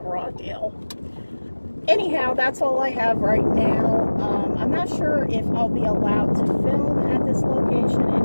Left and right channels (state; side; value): inverted; both; correlation -1.00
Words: a raw deal. Anyhow, that's all I have right now. I'm not sure if I'll be allowed to film at this location.